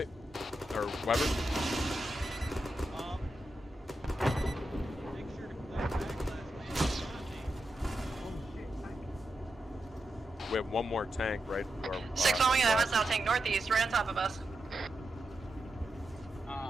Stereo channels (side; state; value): both; normal; correlation 0.87